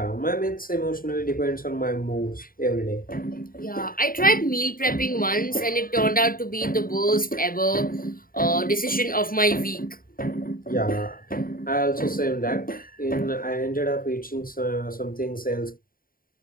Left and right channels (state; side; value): late; right; 0.41 ms